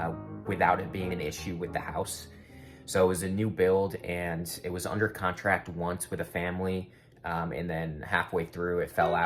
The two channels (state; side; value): identical; both; correlation 1.00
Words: without it being an issue with the house. So it was a new build and it was under contract once with a family, and then halfway through it fell